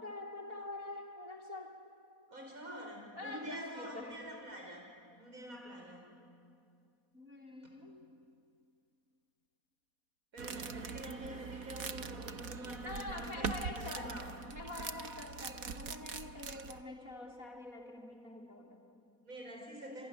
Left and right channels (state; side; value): late; left; 4.1 ms